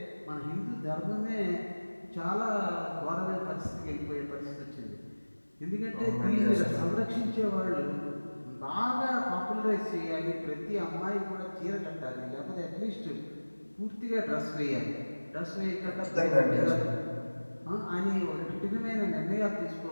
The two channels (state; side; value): inverted; both; correlation -1.00